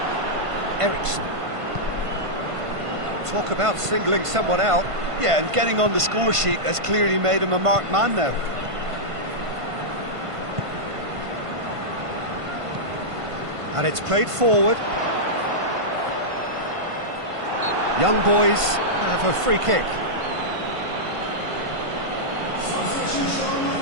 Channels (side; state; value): left; late; 1.5 ms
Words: Eriksson. Talk about singling someone out. Yeah, and getting on the score sheet has clearly made him a marked man now. And it's played forward. Young boys have a free kick.